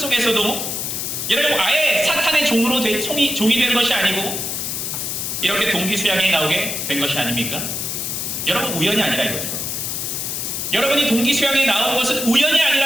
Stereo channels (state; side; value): noise; left; hiss, 3 dB below the sound